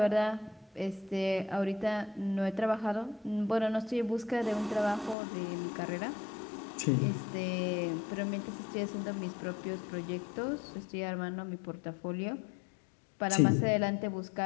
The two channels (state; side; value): drops out; right; at 5.2 s